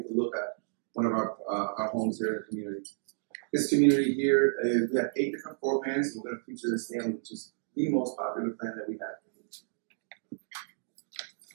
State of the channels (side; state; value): left; silent; digital silence